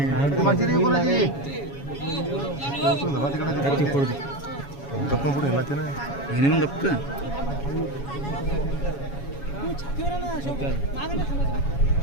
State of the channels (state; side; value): late; right; 7.2 ms